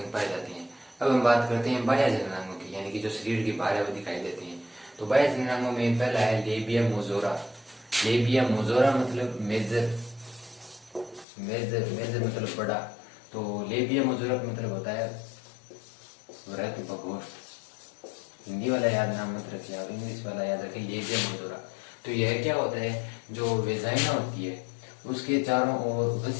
पाए जाते हैं। अब हम बात करते हैं बाह्य जननांगों की, यानी कि जो शरीर के बाहर है वो दिखाई देते हैं। तो बाह्य जननांगों में पहला है लेबिया मोजोरा। लेबिया मोजोरा मतलब मेजर, मेजर मतलब बड़ा। तो लेबिया मोजोरा का मतलब होता है वृहत प्रकोष्ठ। हिंदी वाला याद नाम मत रखिए आप, इंग्लिश वाला याद रखिए, लेबिया मोजोरा। तो यह क्या होता है? जो वेजाइना होती है उसके चारों ओर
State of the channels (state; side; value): drops out; right; at 11.2 s